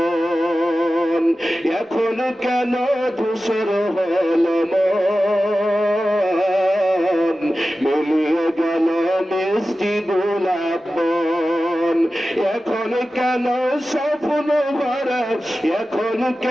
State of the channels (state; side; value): normal; both; correlation 0.94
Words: এখন কেন ধূসর হলো মন, মিলিয়ে গেল মিষ্টি গোলাপ বন। এখন কেন স্বপ্ন ভরা, এখন